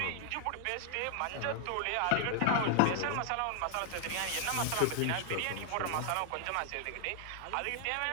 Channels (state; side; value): different; both; correlation 0.00